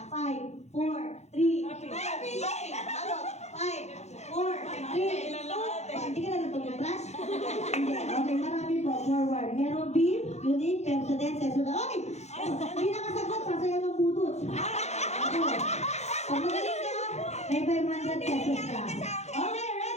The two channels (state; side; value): late; right; 0.32 ms